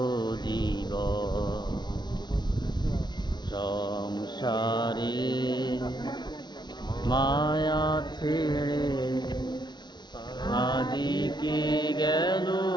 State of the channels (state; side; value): late; right; 0.21 ms